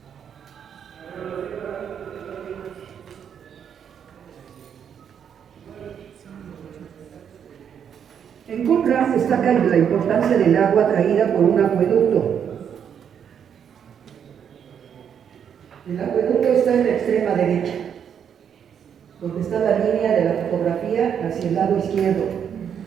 En Qumran destaca la importancia del agua traída por un acueducto. El acueducto está en la extrema derecha, donde está la línea de la fotografía hacia el lado izquierdo.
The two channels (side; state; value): left; quieter; 8.1 dB